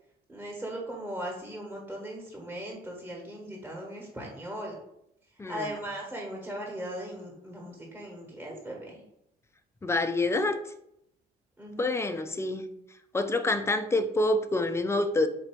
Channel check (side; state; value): both; normal; correlation 0.61